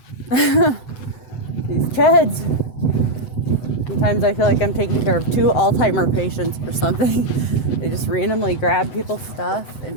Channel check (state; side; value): late; right; 8.0 ms